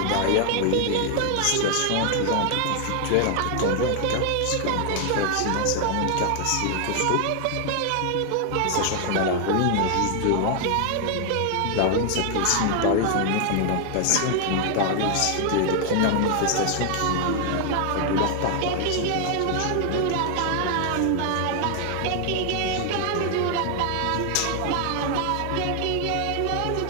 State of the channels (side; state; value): both; different; correlation 0.00